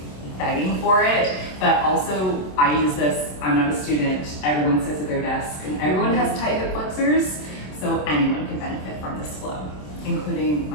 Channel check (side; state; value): right; late; 27 ms